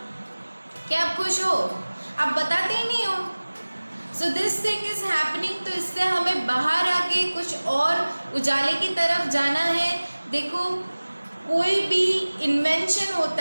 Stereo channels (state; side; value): inverted; both; correlation -1.00